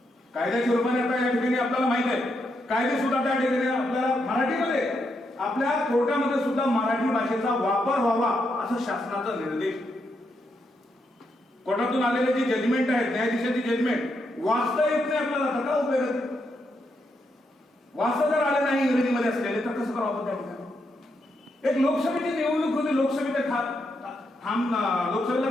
कायद्याच्या रूपाने आता या ठिकाणी आपल्याला माहित आहे, कायदे सुद्धा त्या ठिकाणी आपल्याला मराठीमध्ये, आपल्या कोर्टामध्ये सुद्धा मराठी भाषेचा वापर व्हावा असं शासनाचा निर्देश. कोर्टातून आलेले जे जजमेंट आहेत, न्यायाधीशाची जजमेंट वाचता येत नाही आपल्याला, तर काय उपयोग? वाचता जर आले नाही इंग्रजीमध्ये असलेले तर कसं करावं? त्या ठिकाणी एक लोकसभेची निवडणूक होती. लोकसभेला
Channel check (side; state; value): both; normal; correlation 0.81